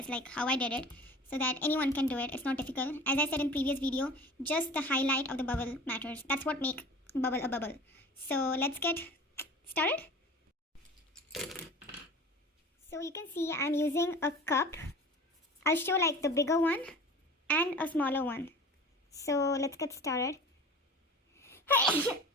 how I did it so that anyone can do it. It's not difficult. As I said in previous video, just the highlight of the bubble matters. That's what makes bubble a bubble. So let's get started. So you can see I'm using a cup. I'll show the bigger one and a smaller one. So let's get started.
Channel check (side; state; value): both; normal; correlation 0.40